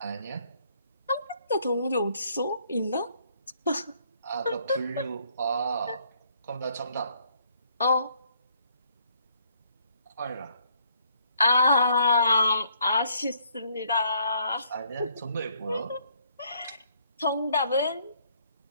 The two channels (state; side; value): inverted; both; correlation -0.67